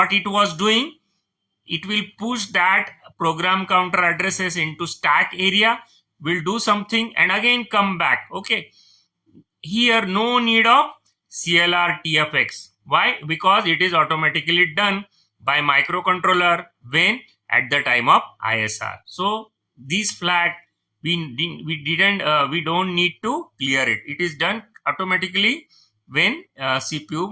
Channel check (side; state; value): both; identical; correlation 1.00